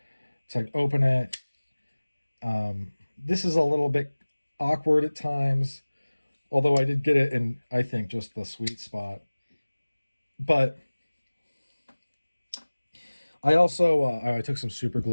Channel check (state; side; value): inverted; both; correlation -1.00